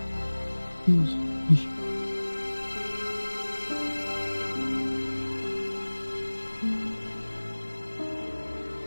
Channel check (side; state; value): both; inverted; correlation -1.00